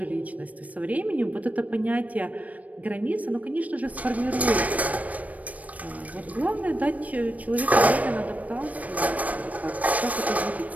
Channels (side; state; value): left; late; 0.070 ms